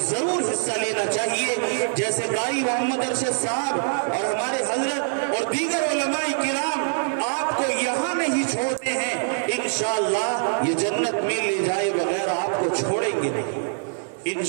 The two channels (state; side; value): silent; left; digital silence